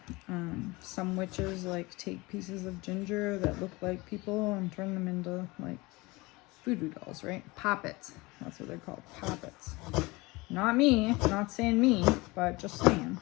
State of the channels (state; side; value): quieter; right; 23.3 dB